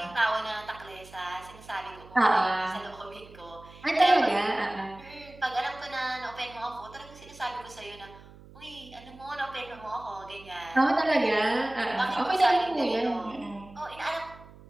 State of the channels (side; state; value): right; noise; hum, 20 dB below the sound